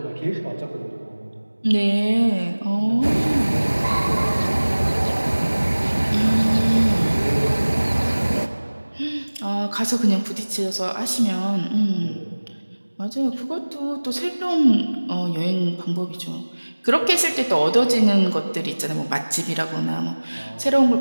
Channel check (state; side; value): inverted; both; correlation -1.00